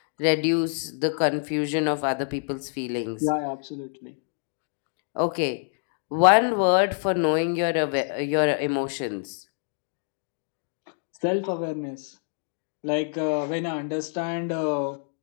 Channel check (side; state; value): right; silent; 61 dB below the other